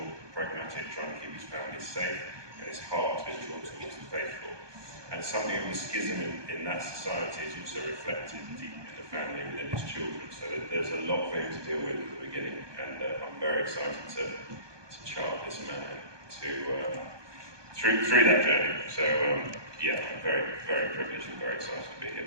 pragmatic, trying to keep his family safe, and his heart is drawn towards the faithful. And something of the schism in that society is also reflected deep in the family within his children. So there's a lot for him to deal with at the beginning, and I'm very excited to chart this man through that journey. So yeah, I'm very, very privileged and very excited to be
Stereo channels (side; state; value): left; late; 1.2 ms